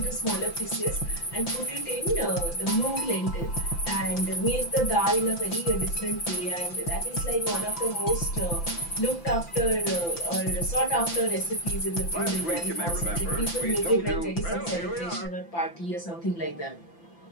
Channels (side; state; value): right; late; 5.9 ms